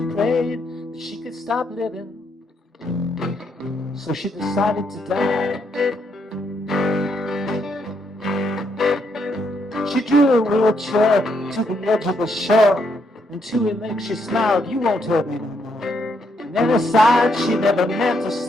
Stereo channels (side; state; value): both; normal; correlation 0.75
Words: prayed that she could stop living. So she decided to die. She drew a wheelchair to the edge of the shore, and to her legs she smiled, "You won't hurt me no more." And then aside she never meant to